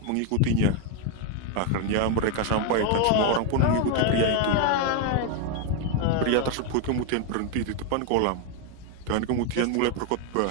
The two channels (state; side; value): different; both; correlation 0.01